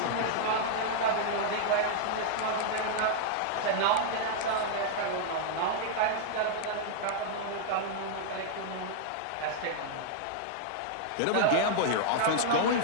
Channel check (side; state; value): both; different; correlation -0.01